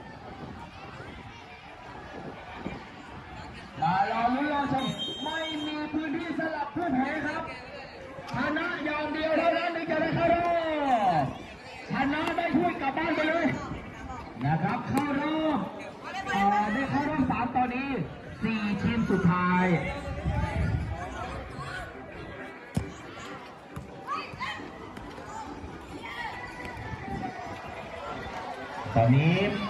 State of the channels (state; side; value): identical; both; correlation 1.00